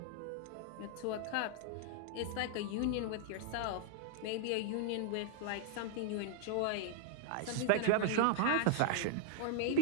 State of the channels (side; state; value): both; different; correlation 0.00